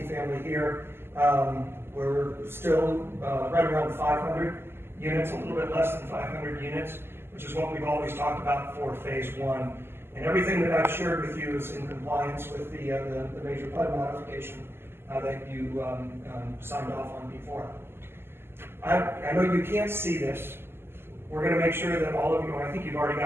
here, We're still right around 500 units, a little bit less than 500 units, which is what we've always talked about for phase one. And everything that I've shared with you is in compliance with the major PUD modification that you signed off on before. I know you can't see this. We're going to make sure that all of you, I think you've already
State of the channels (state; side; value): late; left; 0.12 ms